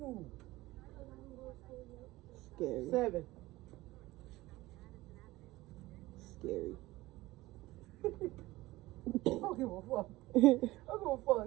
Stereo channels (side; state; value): left; quieter; 18.7 dB